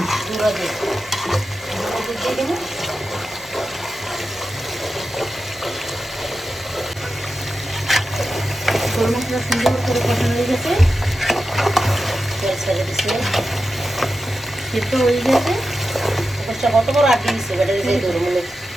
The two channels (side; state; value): both; normal; correlation 0.90